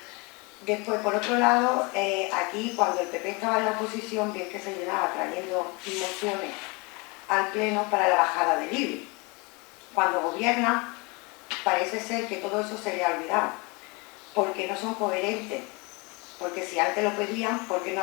Después, por otro lado, aquí cuando el PP estaba en la oposición, bien que se llenaba trayendo mociones al Pleno para la bajada del IBI. Cuando gobierna, parece ser que todo eso se le ha olvidado, porque no son coherentes. Porque si antes lo pedían, ¿por qué no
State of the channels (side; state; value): right; quieter; 28.5 dB